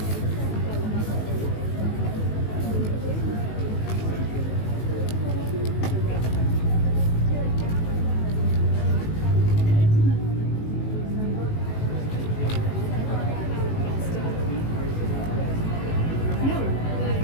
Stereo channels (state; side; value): late; right; 19 ms